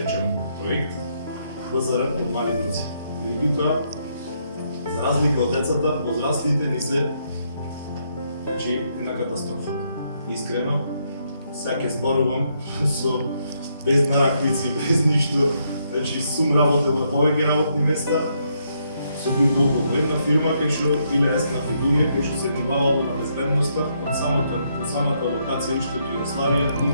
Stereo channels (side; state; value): both; inverted; correlation -0.75